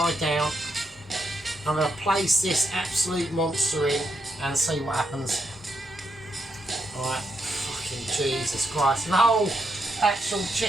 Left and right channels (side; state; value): both; normal; correlation 0.80